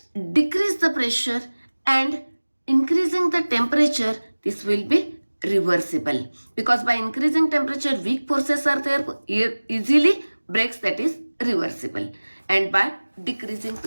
decrease the pressure and increasing the temperature, this will be reversible. Because by increasing temperature, weak forces are there, easily breaks, that is reversible. And by decreasing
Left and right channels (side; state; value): both; inverted; correlation -1.00